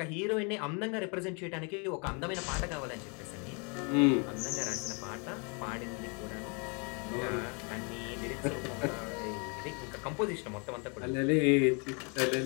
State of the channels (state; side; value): quieter; right; 34.5 dB